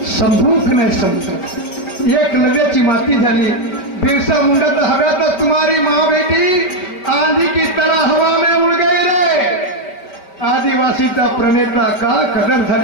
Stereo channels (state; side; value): late; right; 5.2 ms